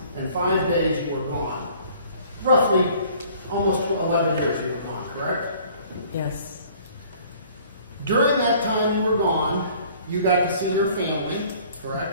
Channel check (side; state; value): both; inverted; correlation -0.54